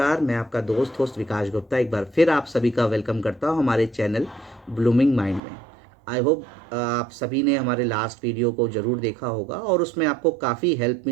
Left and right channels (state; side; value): drops out; left; at 5.4 s